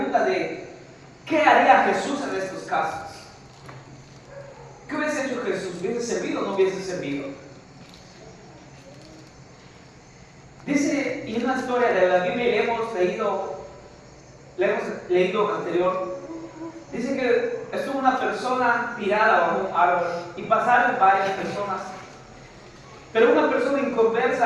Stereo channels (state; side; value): identical; both; correlation 1.00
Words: de ¿qué haría Jesús en estos casos? ¿Qué hubiese hecho Jesús? ¿Hubiese servido o no hubiese servido? Dice, y una historia de la Biblia le hemos leído anterior. Dice que estuvo una persona tirada bajo un árbol y pasaron varias personas. Pero una persona